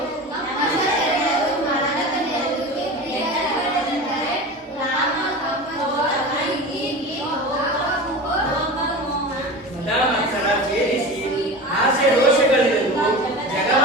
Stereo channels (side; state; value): both; normal; correlation 0.31